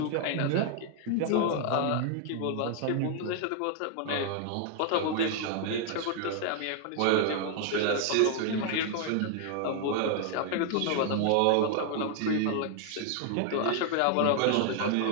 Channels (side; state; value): both; different; correlation 0.00